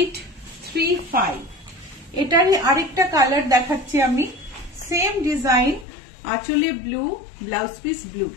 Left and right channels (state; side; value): drops out; right; at 5.9 s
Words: এটারই আরেকটা কালার দেখাচ্ছি আমি, সেম ডিজাইন, আঁচলে blue, blouse piece blue.